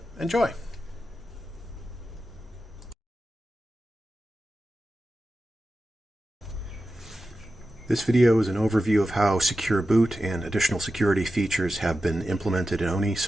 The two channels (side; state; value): both; normal; correlation 0.92